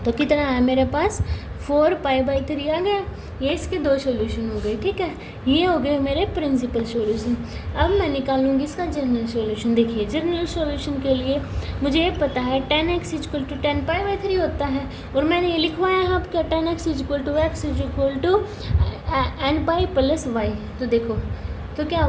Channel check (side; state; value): both; identical; correlation 1.00